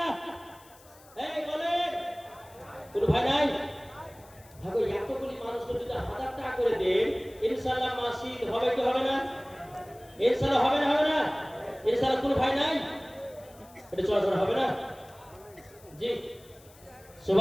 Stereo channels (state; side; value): noise; left; hiss, 25 dB below the sound